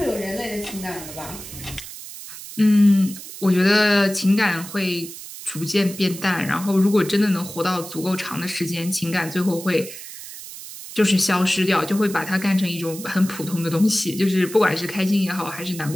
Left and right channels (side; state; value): right; noise; hiss, 13 dB below the sound